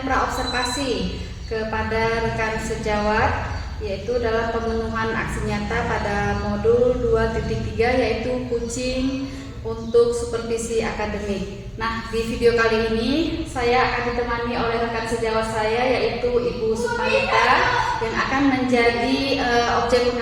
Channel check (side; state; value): both; identical; correlation 1.00